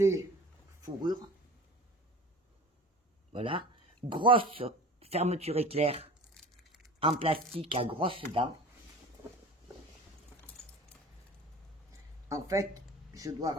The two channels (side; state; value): both; normal; correlation 0.39